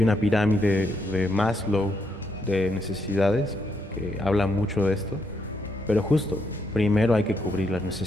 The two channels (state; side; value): normal; both; correlation 0.77